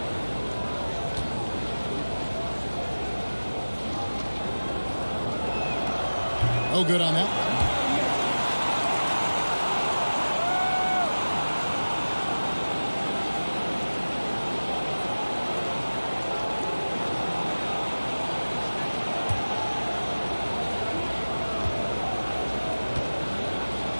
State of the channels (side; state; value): both; inverted; correlation -1.00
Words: No good on that.